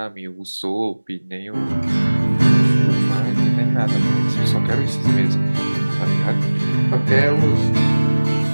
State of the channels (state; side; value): inverted; both; correlation -1.00